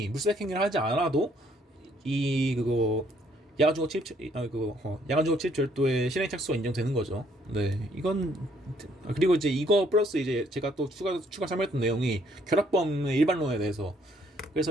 물색 행위를 하지 않아도 이 그거 야간주거 침입 절도의 실행 착수가 인정되는 거죠. 네, 이건 그리고 이제 이거 플러스 이제 제가 또 추가 설명했던 내용이 결합범의 일반론에 대해서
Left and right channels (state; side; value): normal; both; correlation 0.66